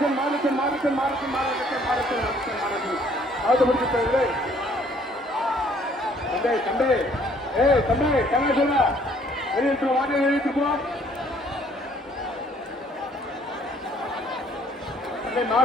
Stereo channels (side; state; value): both; normal; correlation 0.61